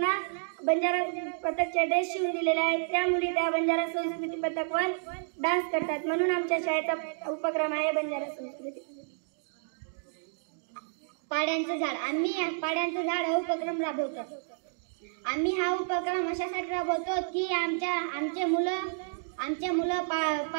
बंजारा पथकचे ड्रेस शिवून दिलेले आहेत. त्या मुली त्या बंजारा संस्कृती पथकवर डान्स करतात. म्हणून आमच्या शाळेचा उपक्रम आहे बंजारा संस्कृती. पाड्यांचं झाड. आम्ही पाड्यांचं झाड हा उपक्रम राबवतो. आम्ही हा उपक्रम अशासाठी राबवतो की आमचे मुलं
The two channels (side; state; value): left; silent; digital silence